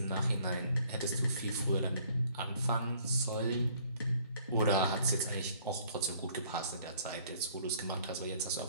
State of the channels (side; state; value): both; inverted; correlation -0.59